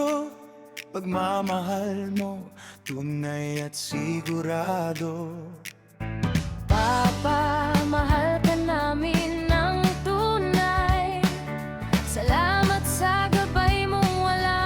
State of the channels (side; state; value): both; identical; correlation 1.00